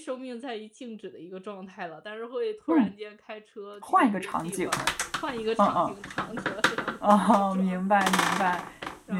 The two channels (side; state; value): both; identical; correlation 1.00